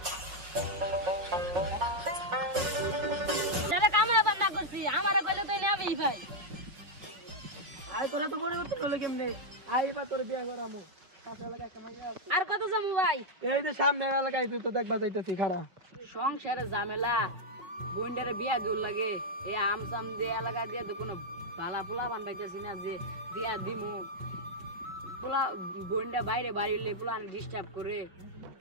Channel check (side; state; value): left; late; 5.5 ms